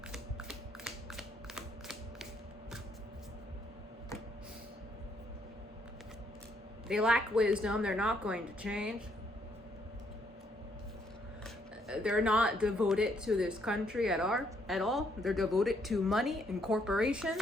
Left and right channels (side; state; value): both; normal; correlation 0.71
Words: They lack wisdom. They're not going to change. They're not devoted to this country at all. They're devoted to money and